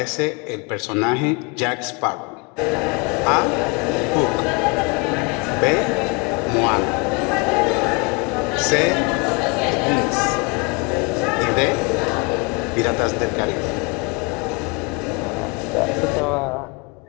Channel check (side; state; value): right; quieter; 30.4 dB